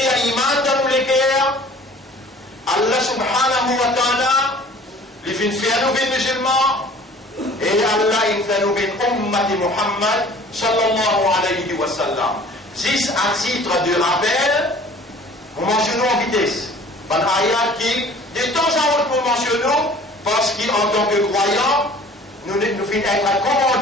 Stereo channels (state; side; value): normal; both; correlation 0.48